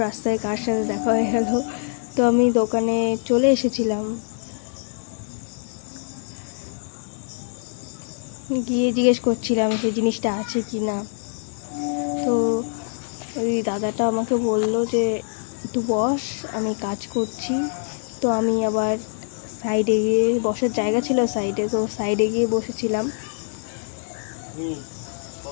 রাস্তায় কার সাথে দেখা হয়ে গেল। তো আমি দোকানে চলে এসেছিলাম, গিয়ে জিজ্ঞেস করছিলাম সেই জিনিসটা আছে কি না। তো ওই দাদাটা আমাকে বলল যে একটু বস, আমি কাজ করছি। তো আমি আবার সাইডে গিয়ে, বসার জায়গা ছিল সাইডে, তো সাইডে গিয়ে বসেছিলাম।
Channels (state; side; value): silent; right; 63 dB below the other